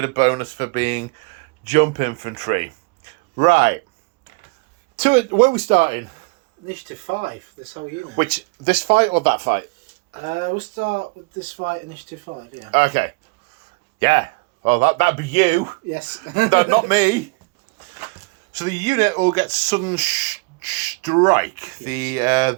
of bonus for being jump infantry. Right. Where are we starting? Initiative 5, this whole unit. Which, this fight or that fight? We'll start with this fight, Initiative 5, yeah. Okay. Yeah. Well, that'd be you. Yes. No, not me. So the unit will get sudden strike. Yes.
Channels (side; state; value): left; quieter; 29.4 dB